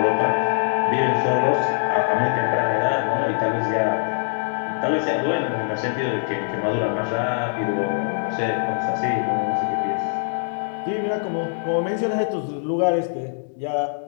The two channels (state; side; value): silent; right; digital silence